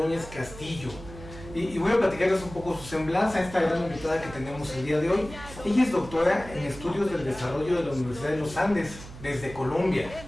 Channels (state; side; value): noise; right; hum, 15 dB below the sound